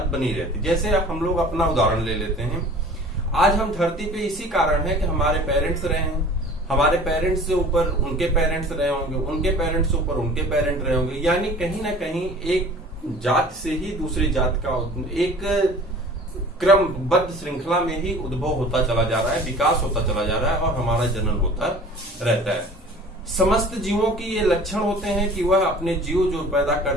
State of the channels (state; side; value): normal; both; correlation 0.45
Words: बनी रहती। जैसे हम लोग अपना उदाहरण ले लेते हैं। आज हम धरती पे इसी कारण है कि हमारे पेरेंट्स रहे हैं, हमारे पेरेंट्स से ऊपर उनके पेरेंट्स रहे होंगे, उनके पेरेंट्स से ऊपर उनके पेरेंट रहे होंगे। यानी कहीं ना कहीं एक जात से ही दूसरी जात का एक क्रमबद्ध श्रृंखला में ही उद्भव होता चला जा रहा है, विकास होता चला जा रहा है और हमारा जनन होता रहता है। समस्त जीवों की ये लक्षण होते हैं कि वह अपने जीव जो पैदा